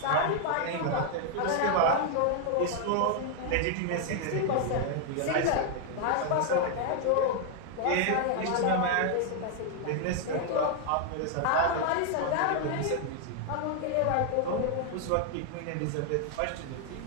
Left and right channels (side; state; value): both; different; correlation 0.00